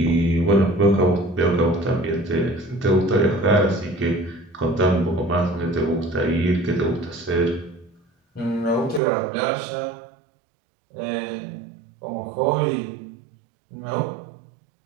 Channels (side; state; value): left; drops out; at 9.0 s